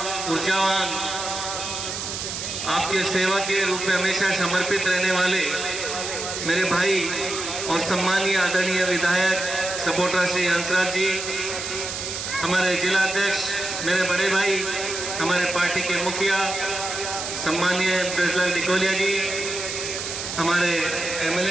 ऊर्जावान, आपके सेवा के रूप में हमेशा समर्पित रहने वाले मेरे भाई और सम्मानीय आदरणीय विधायक सपोर्टर श्री हंसराज जी, हमारे जिला अध्यक्ष मेरे बड़े भाई, हमारे पार्टी के मुखिया सम्मानीय ब्रजलाल डिकोलिया जी, हमारे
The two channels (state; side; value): noise; right; hiss, 5 dB below the sound